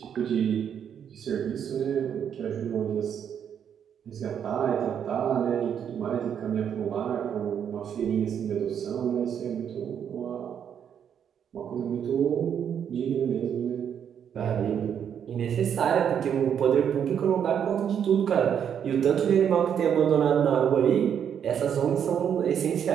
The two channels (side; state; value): left; quieter; 8.4 dB